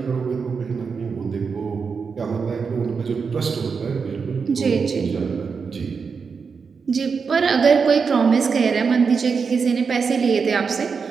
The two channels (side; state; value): left; quieter; 5.5 dB